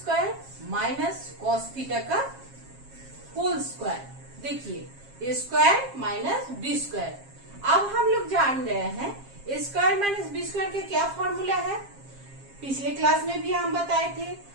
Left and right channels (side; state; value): left; late; 7.4 ms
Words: माइनस कॉस थीटा का होल स्क्वायर। देखिए ए स्क्वायर माइनस बी स्क्वायर। अब हम लोग जान रहे हैं a square minus B square का क्या फॉर्मूला है। पिछले क्लास में भी हम बताए थे,